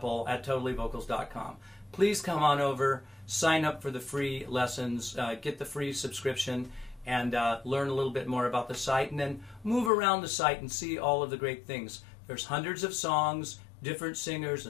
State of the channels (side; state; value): right; drops out; at 9.9 s